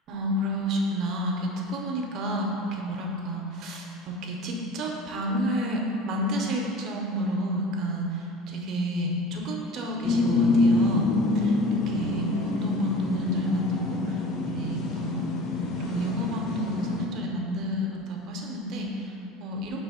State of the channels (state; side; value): normal; both; correlation 0.38